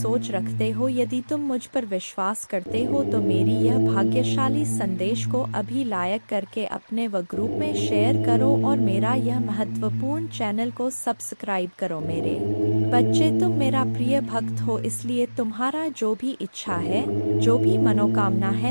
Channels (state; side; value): inverted; both; correlation -1.00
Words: रखते हो। यदि तुम मुझ पर विश्वास करते हो तो मेरी यह भाग्यशाली संदेश को अभी लाइक करके अपने व ग्रुप में शेयर करो और मेरा यह महत्वपूर्ण चैनल को सब्सक्राइब करो। मेरे बच्चे, तुम मेरा प्रिय भक्त हो, इसलिए तुम्हारा जो भी इच्छा है, जो भी मनोकामना